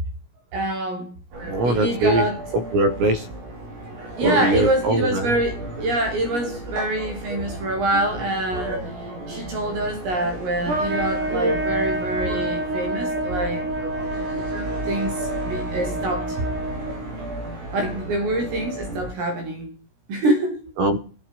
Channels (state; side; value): late; left; 17 ms